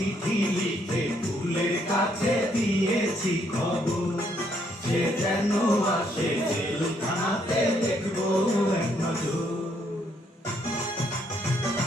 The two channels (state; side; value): normal; both; correlation 0.71